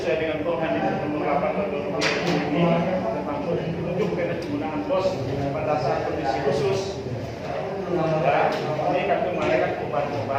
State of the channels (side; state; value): both; identical; correlation 1.00